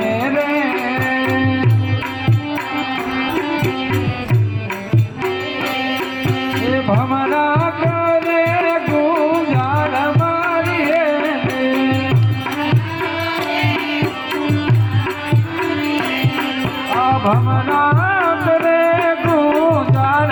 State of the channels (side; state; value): both; identical; correlation 1.00